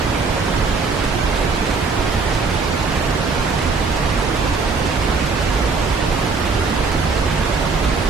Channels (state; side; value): quieter; left; 4.5 dB